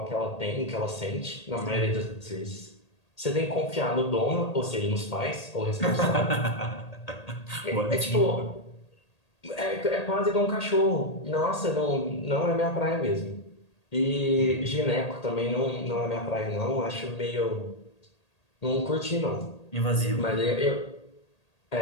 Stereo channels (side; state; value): right; late; 1.8 ms